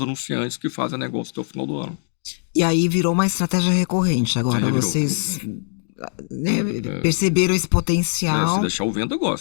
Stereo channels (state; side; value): silent; right; digital silence